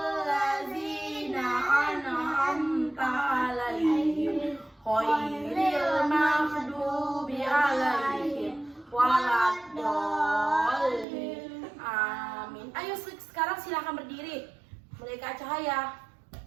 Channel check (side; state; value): left; drops out; at 11.1 s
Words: ladzina an'amta 'alaihim ghairil maghdubi 'alaihim waladdallin. Amin. Ayo sekarang silakan berdiri. Mulai Kak Cahaya.